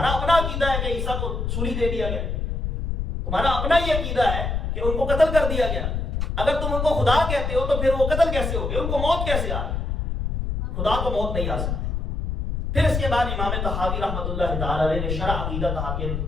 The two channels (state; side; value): noise; left; rumble, 2 dB below the sound